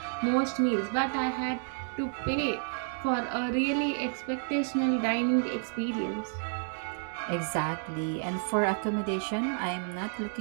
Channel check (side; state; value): left; silent; 57 dB below the other